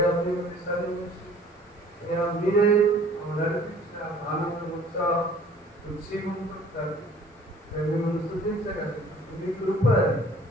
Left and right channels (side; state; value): both; normal; correlation 0.52